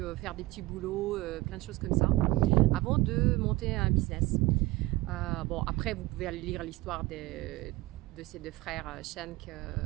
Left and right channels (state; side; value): quieter; left; 19.8 dB